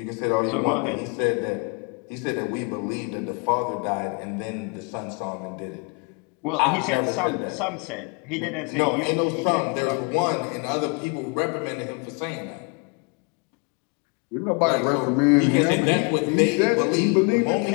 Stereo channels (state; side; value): quieter; right; 33.3 dB